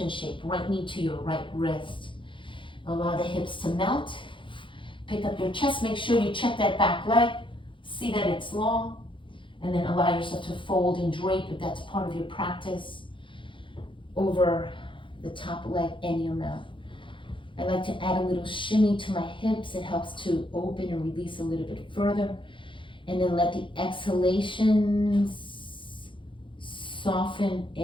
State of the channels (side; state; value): right; late; 0.24 ms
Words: shape, right knee to your right wrist. Allow the hips to melt. Pick up your chest, make sure you check that back leg. See that it's long. And then allow yourself to fold and drape, if that's part of your practice, over the top leg any amount. I like to add a little shimmy to my hips. It helps to open and release a little bit further. And then let the exhalations soften